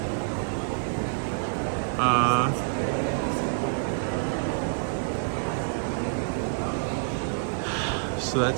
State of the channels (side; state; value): left; silent; digital silence